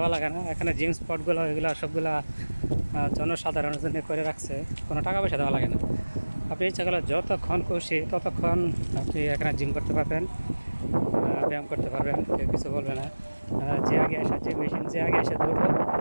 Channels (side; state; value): both; inverted; correlation -1.00